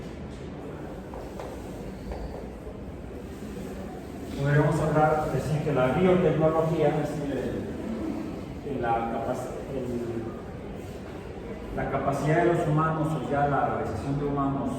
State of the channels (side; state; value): both; identical; correlation 1.00